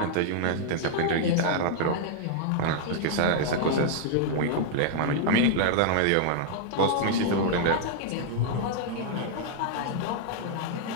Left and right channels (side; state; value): both; different; correlation -0.01